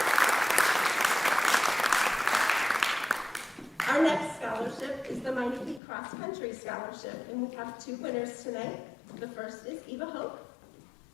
Our next scholarship is the Minor Peak Cross Country Scholarship, and we have 2 winners tonight. The first is Eva Hope.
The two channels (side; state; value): right; drops out; at 5.8 s